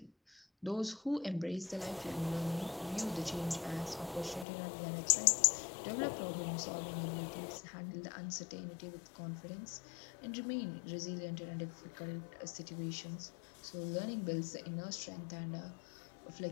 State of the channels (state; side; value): drops out; right; at 4.5 s